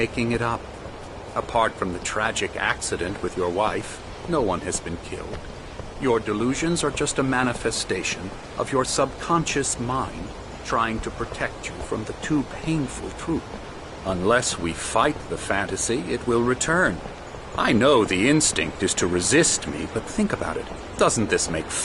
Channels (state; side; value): identical; both; correlation 1.00